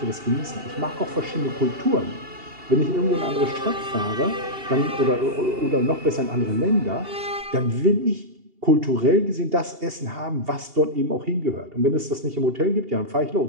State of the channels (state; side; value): late; left; 2.8 ms